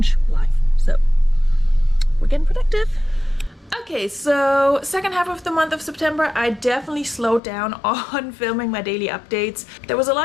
live. So we're getting productive. Okay, so second half of the month of September, I definitely slowed down on filming my daily updates. There was a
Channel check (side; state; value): right; drops out; at 7.4 s